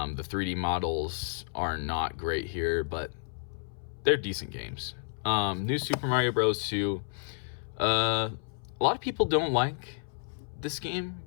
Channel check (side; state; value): right; silent; 57 dB below the other